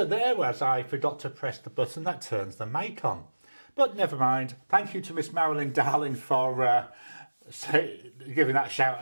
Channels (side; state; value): both; inverted; correlation -1.00